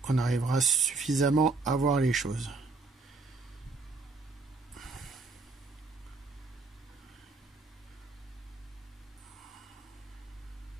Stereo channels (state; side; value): quieter; left; 3.7 dB